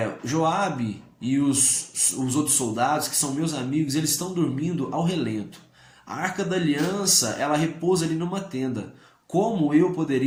Joabe e os outros soldados, que são meus amigos, eles estão dormindo ao relento. A Arca da Aliança, ela repousa ali numa tenda. Como eu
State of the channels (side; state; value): both; identical; correlation 1.00